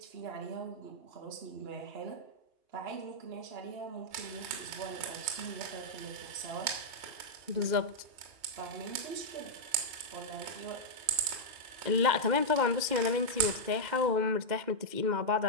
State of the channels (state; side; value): late; left; 2.1 ms